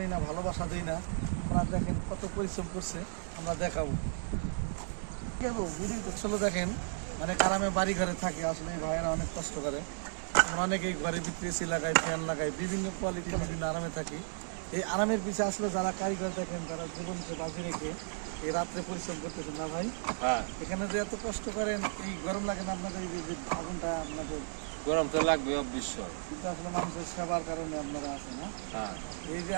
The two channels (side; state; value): left; silent; digital silence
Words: না, ভালোবাসা দিই না। আমরা দেখেন কত পরিশ্রম করছে, আমরা দেখাবো। আসলে দেখেন মানে গ্রামে বাড়ি ঘরে থাকে, আসলে এই ভাইয়েরা অনেক কষ্ট করে। আমরা অনেকেই ঘরের ভিতরে এসি লাগাই, ফ্যান লাগাই, বিভিন্ন কোয়ালিটির বিভিন্ন আরামে থাকি। এই আরামের পিছিয়ে আসলে যারা কারিগর দেখেন, যারা জীবনকে বাজি রেখে এই রাত্রে পরিশ্রম করতেছেন না ভাই। হ্যাঁ, এখানে যে এত কষ্ট করেন, এই গরম লাগে না আপনাদের? এই যে আগুনটা আপনাদের গরম তো লাগবে অবশ্যই। কিন্তু আসলে মানুষের সেবার কারণে আপনারা আছেন না। হ্যাঁ, এই যে